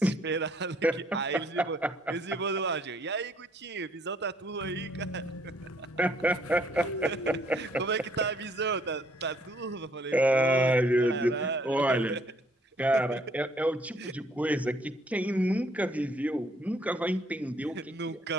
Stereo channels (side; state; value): both; normal; correlation 0.65